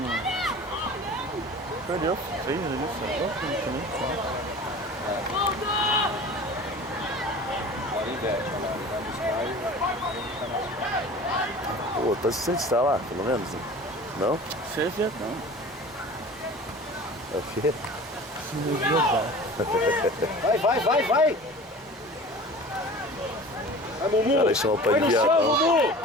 Perdeu, fez ali, só. Pô, tá se está lá, pelo menos? Não? Você é viadão. É o quê? Vai! Vai, Mumu! Cara, chama o pai Põe de no viadão. chão, Mumu!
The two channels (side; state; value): both; normal; correlation 0.40